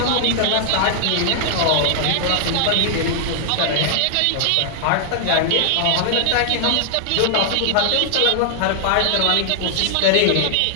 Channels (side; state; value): both; different; correlation 0.00